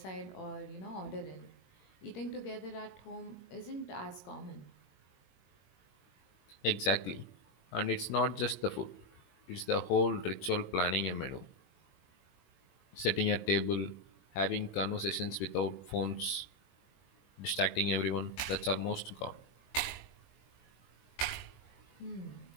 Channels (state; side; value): late; right; 21 ms